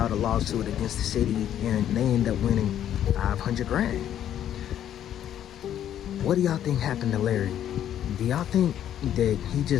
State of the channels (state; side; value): quieter; right; 10.6 dB